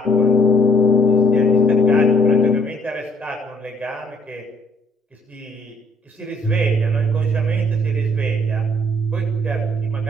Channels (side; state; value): both; normal; correlation 0.63